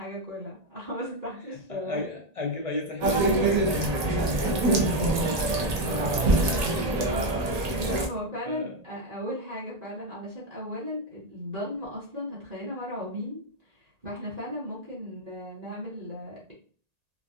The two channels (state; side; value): late; left; 1.8 ms